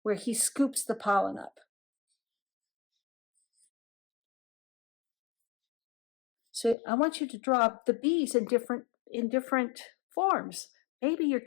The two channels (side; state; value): right; drops out; at 6.8 s